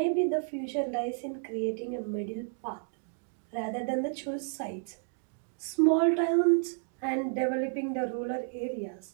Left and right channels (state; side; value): silent; left; digital silence